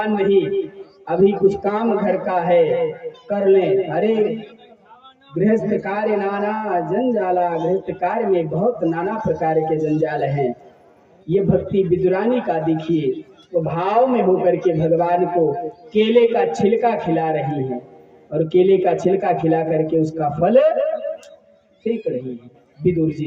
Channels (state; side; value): identical; both; correlation 1.00